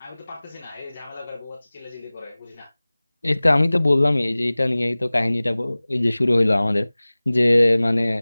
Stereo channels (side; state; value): both; inverted; correlation -0.99